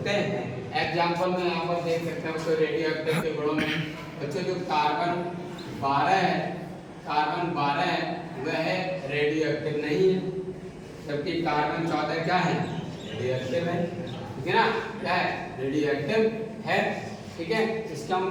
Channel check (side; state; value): both; identical; correlation 1.00